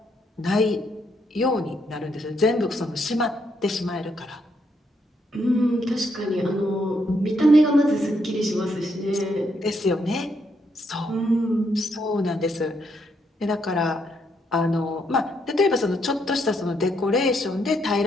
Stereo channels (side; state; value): both; normal; correlation 0.76